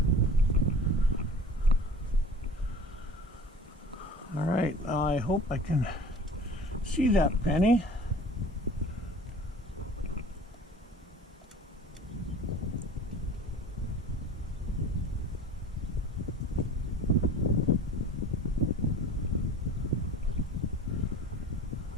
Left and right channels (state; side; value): normal; both; correlation 0.43